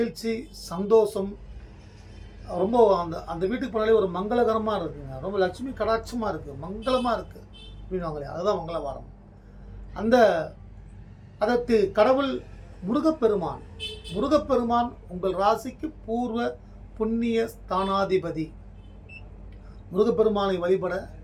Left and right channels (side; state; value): both; identical; correlation 1.00